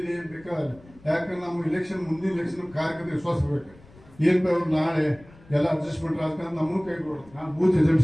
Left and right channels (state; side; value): noise; left; rumble, 24 dB below the sound